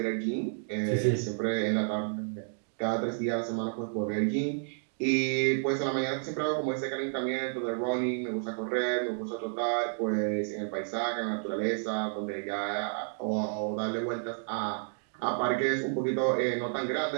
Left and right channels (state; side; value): silent; left; digital silence